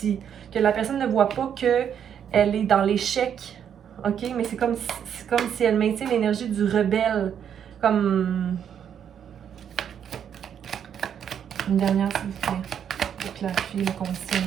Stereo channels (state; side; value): quieter; left; 8.6 dB